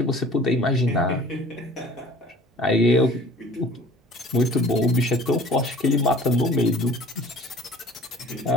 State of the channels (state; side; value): normal; both; correlation 0.48